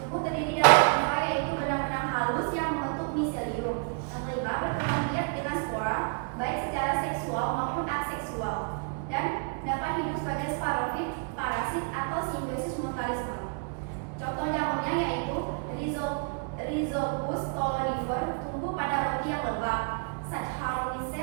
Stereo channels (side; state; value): left; quieter; 40.0 dB